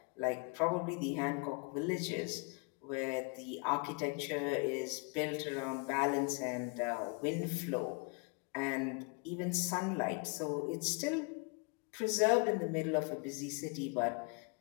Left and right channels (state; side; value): quieter; right; 32.3 dB